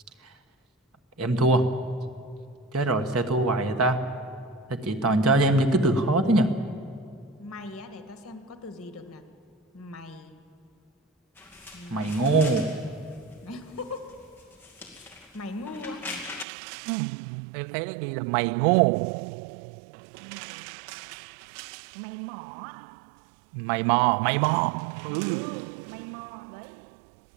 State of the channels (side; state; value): left; drops out; at 16.4 s